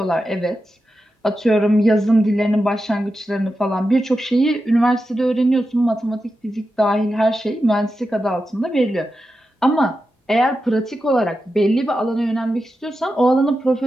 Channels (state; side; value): normal; both; correlation 0.90